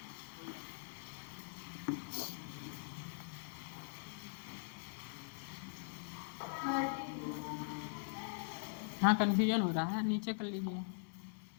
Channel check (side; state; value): right; silent; digital silence